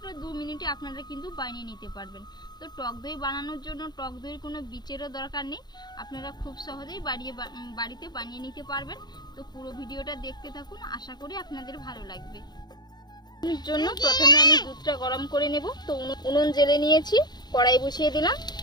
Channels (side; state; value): right; late; 0.20 ms